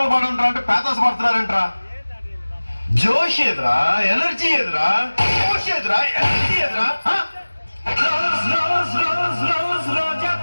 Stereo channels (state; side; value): inverted; both; correlation -1.00